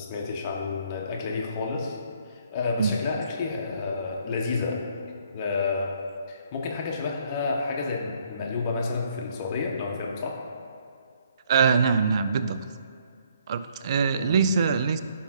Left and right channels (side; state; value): both; inverted; correlation -0.66